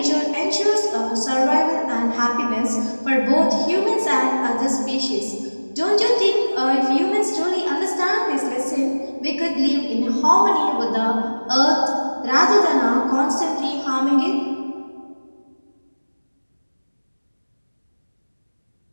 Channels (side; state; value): both; inverted; correlation -1.00